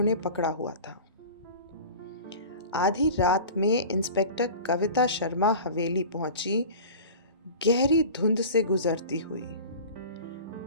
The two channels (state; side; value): inverted; both; correlation -0.37